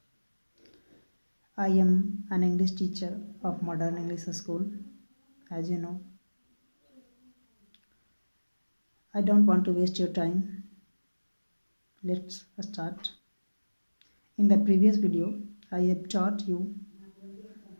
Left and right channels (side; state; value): both; inverted; correlation -1.00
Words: I am an English teacher of Modern English School. As you know, I don't want to waste your time. Let's start. In the previous video, I have taught you